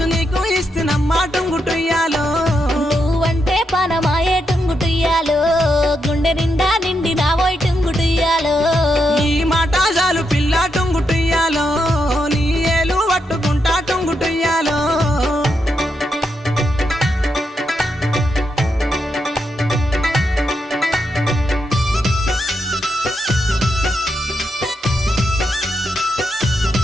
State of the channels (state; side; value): normal; both; correlation 0.82